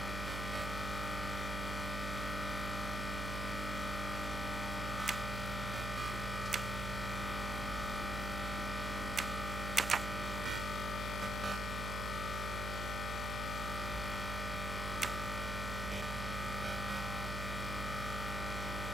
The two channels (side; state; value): right; noise; hum, 2 dB below the sound